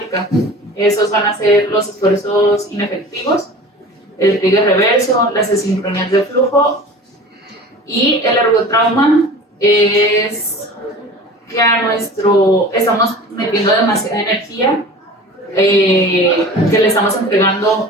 Esos van a ser los esfuerzos inefectivos, el trigger reverso, las asincronías de flujo, y el ergotrauma es que estamos metiendo demasiada energía que le estamos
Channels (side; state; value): both; normal; correlation 0.39